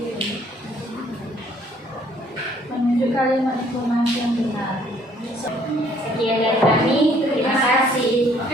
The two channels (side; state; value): both; normal; correlation 0.62